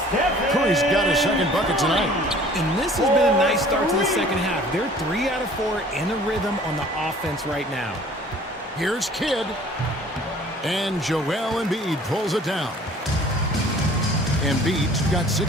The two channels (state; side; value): normal; both; correlation 0.51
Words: Curry's got his second bucket tonight. And this has been a nice start to the second half. They're 3 out of 4 in a rhythm on the offense right now. Here's Kidd. And Joel Embiid pulls it down. Embiid's got